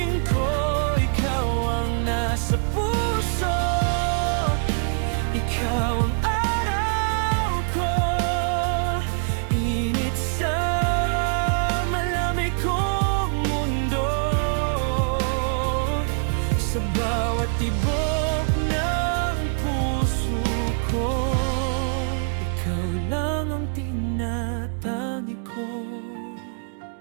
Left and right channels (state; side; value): silent; left; 63 dB below the other